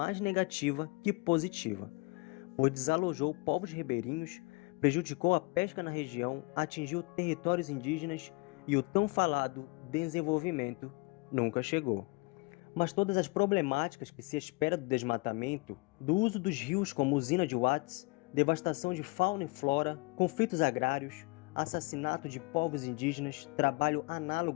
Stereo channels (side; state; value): right; quieter; 27.5 dB